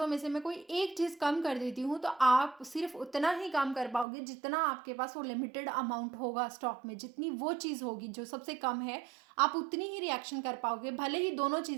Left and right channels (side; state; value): left; drops out; at 4.0 s